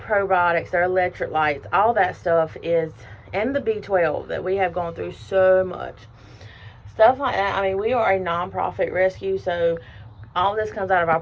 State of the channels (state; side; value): identical; both; correlation 1.00